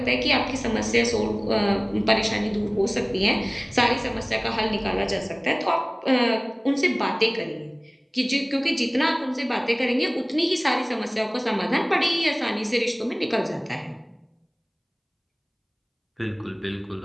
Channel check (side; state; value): both; identical; correlation 1.00